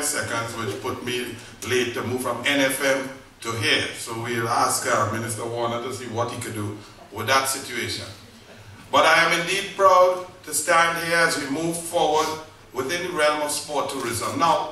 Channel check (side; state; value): both; identical; correlation 1.00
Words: seconds, which put me late to move from NFM to here. So we'll ask Minister Warner to see what he could do with that situation. But I am indeed proud to stand here as we move forward within the realm of sport tourism.